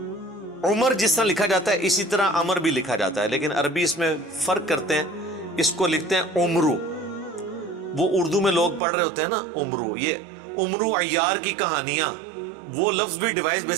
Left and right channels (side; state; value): left; drops out; at 8.8 s